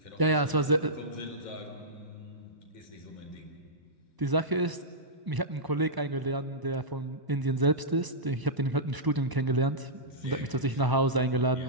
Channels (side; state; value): left; late; 1.0 ms